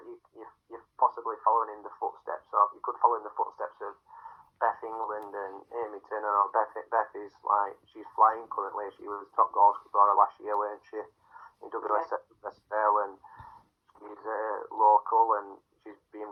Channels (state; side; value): identical; both; correlation 1.00